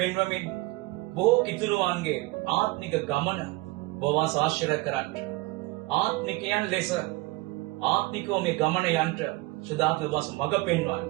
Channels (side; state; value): left; quieter; 21.4 dB